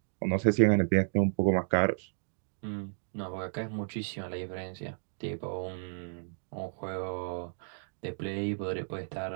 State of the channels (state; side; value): silent; left; digital silence